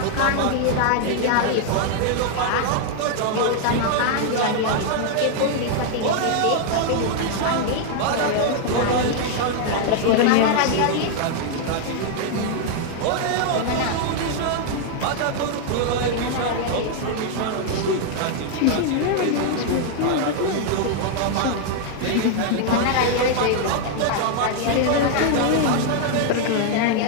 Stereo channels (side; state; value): both; different; correlation 0.00